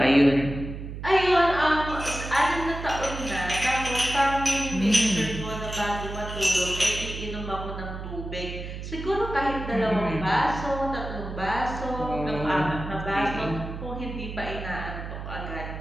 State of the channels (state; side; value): noise; right; hum, 8 dB below the sound